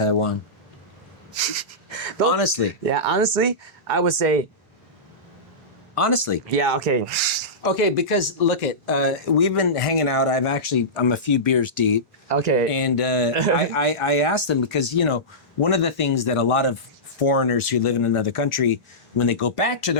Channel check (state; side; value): normal; both; correlation -0.17